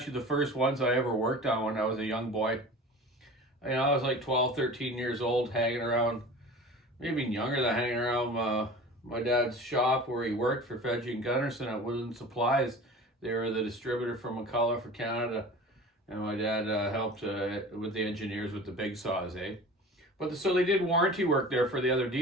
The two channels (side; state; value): both; normal; correlation 0.38